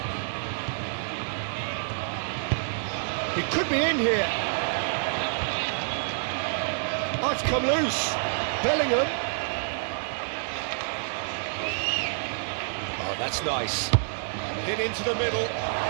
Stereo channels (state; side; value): silent; left; digital silence